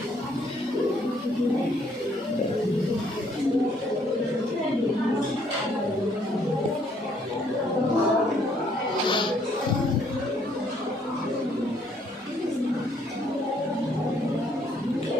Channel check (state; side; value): normal; both; correlation 0.66